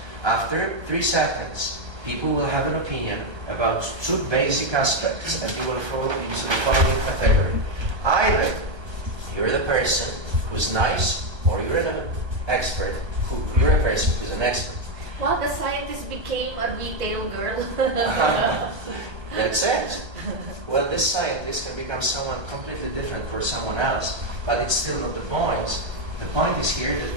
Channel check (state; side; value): late; left; 1.3 ms